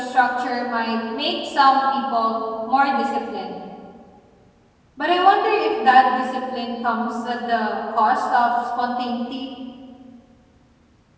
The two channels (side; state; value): both; identical; correlation 1.00